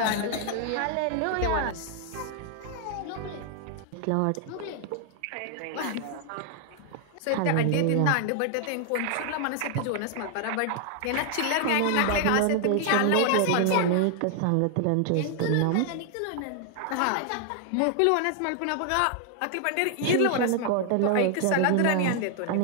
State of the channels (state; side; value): different; both; correlation 0.00